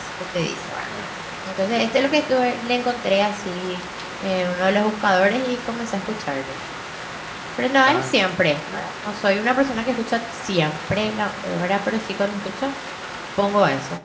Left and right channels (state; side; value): identical; both; correlation 1.00